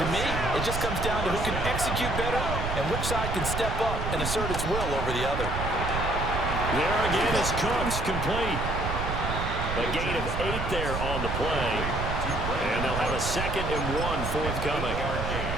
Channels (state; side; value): noise; right; rumble, 3 dB below the sound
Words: To me, it just comes down to who can execute better and which side can step up and assert its will over the other. There again is Cooks, complete. A gain of 8 there on the play. And they'll have a 2nd and 1 forthcoming.